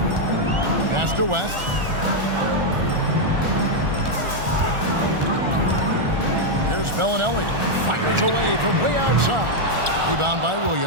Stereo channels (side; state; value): left; late; 1.4 ms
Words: Pass to West. Here's Bellinelli. Fires away from way outside. Rebound by